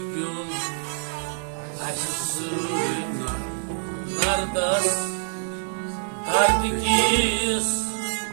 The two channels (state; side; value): silent; left; 61 dB below the other